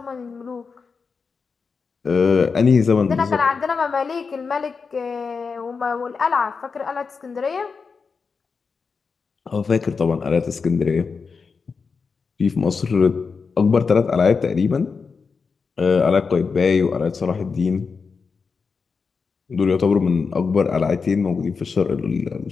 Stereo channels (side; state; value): right; quieter; 5.1 dB